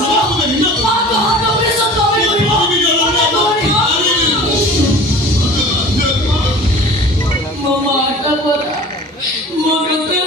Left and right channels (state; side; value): normal; both; correlation 0.42